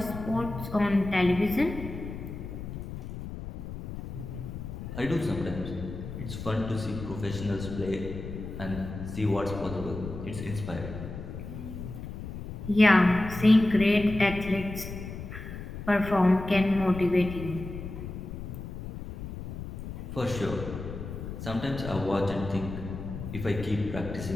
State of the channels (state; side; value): noise; left; rumble, 9 dB below the sound